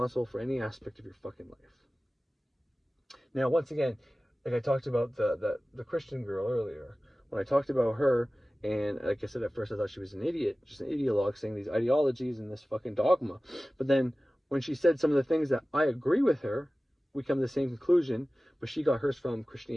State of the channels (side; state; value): both; normal; correlation 0.97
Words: for any aspect of your fucking life. Now, once again, like I talked about the Christian girl earlier, when I talked about her, and like I said, at first I thought she was an idiot, just an ideologue saying these ideologies and this fucking dogma. But then when she said some of the things that I agree with her, we come to the same conclusion, but she got hers from